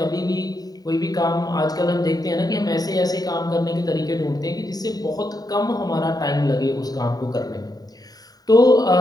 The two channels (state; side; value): late; right; 0.18 ms